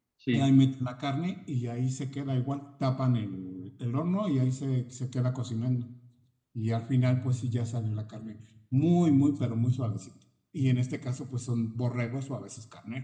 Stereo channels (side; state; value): both; identical; correlation 1.00